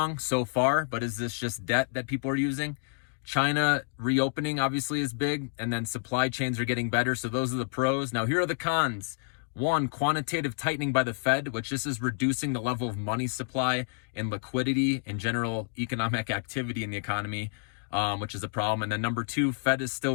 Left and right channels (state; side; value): silent; right; digital silence